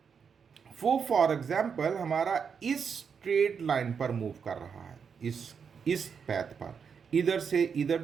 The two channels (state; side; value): quieter; left; 6.5 dB